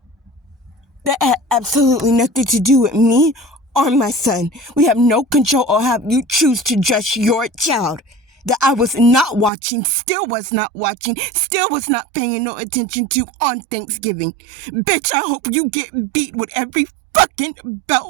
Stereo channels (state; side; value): drops out; left; at 9.5 s